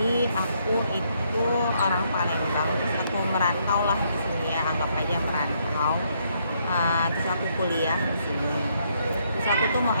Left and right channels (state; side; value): inverted; both; correlation -0.73